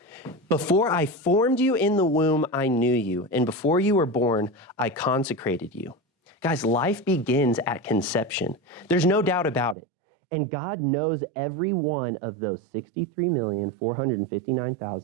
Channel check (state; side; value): drops out; left; at 9.8 s